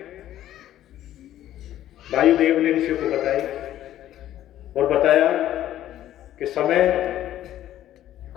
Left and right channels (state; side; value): quieter; right; 12.6 dB